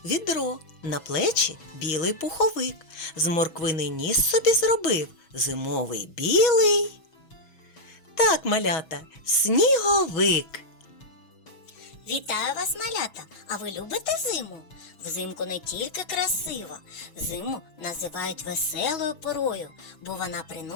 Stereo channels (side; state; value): right; late; 6.2 ms